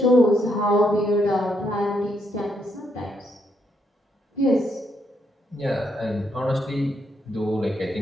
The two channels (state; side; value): normal; both; correlation 0.76